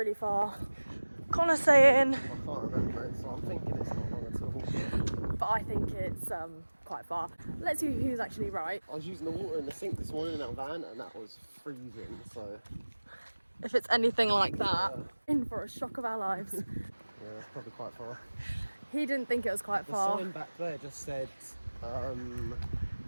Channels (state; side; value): inverted; both; correlation -1.00